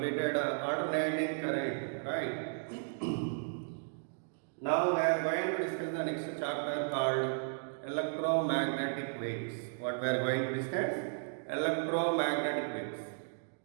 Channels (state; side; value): silent; left; digital silence